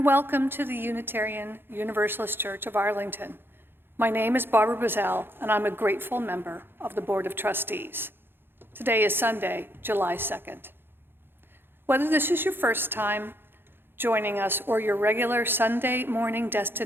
welcome to the Unitarian Universalist Church of Arlington. My name is Barbara Bazell, and I'm a grateful member of the Board of Trustees. Today is Sunday, July 2nd. Whether this is your first time joining us or your regular Sunday morning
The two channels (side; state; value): left; late; 0.10 ms